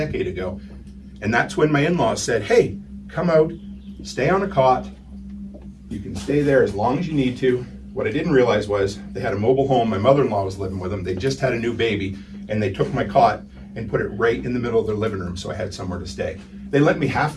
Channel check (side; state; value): both; identical; correlation 1.00